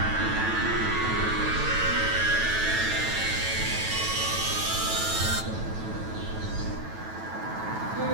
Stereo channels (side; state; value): left; late; 9.1 ms